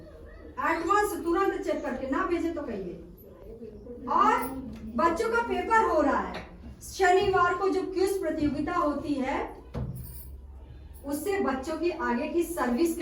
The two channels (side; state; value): both; identical; correlation 1.00